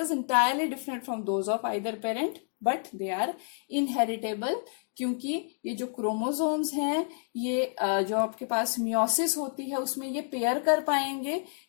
entirely different from those of either parent, but they are inheritable, क्योंकि ये जो क्रोमोसोम्स हैं ये जो आपके पास मियोसिस होती है उसमें ये पेयर कर पाएंगे,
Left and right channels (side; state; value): right; silent; 58 dB below the other